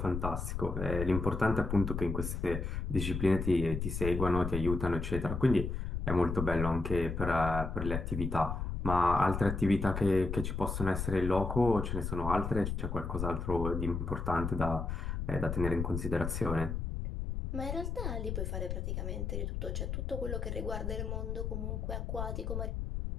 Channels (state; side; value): noise; left; rumble, 3 dB below the sound